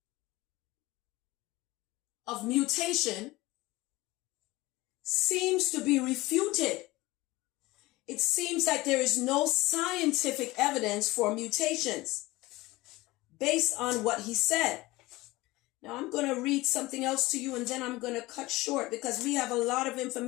of mutation seems to be refuted. It seems like there is no scientific evidence for mutations based on what he said. Now I'm going to read something else to you and then I'm going to cut short because we have a lot of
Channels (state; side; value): quieter; right; 19.9 dB